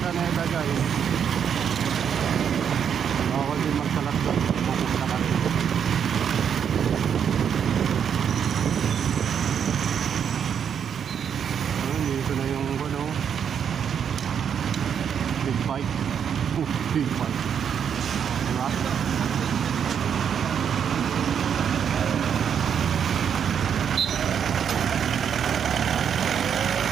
guys. Bawal din magkalat doon, makusta ka rin. Dito na yung ano, big bike. Big bike.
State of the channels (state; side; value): quieter; left; 7.9 dB